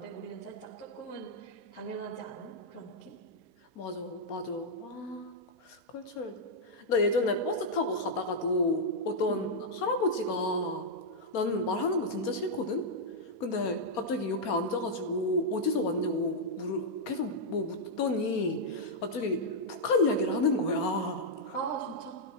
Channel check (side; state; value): right; late; 4.3 ms